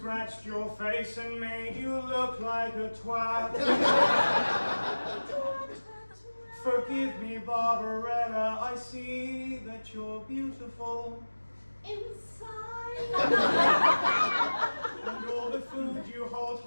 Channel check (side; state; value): both; inverted; correlation -1.00